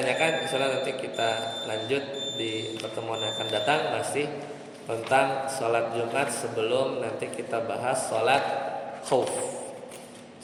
insyaallah nanti kita lanjut di pertemuan yang akan datang, masih tentang sholat Jumat sebelum nanti kita bahas sholat khauf.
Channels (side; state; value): both; identical; correlation 1.00